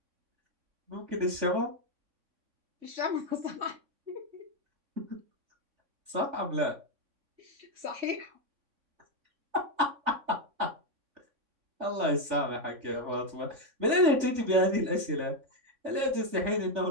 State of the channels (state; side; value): late; left; 3.5 ms